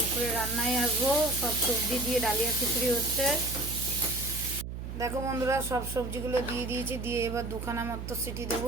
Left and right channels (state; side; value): noise; right; hum, 7 dB below the sound